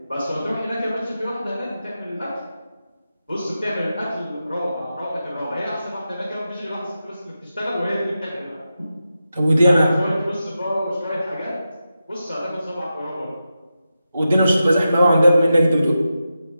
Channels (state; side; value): inverted; both; correlation -0.90